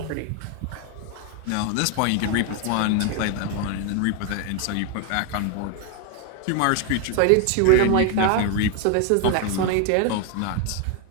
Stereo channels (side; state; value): both; different; correlation 0.01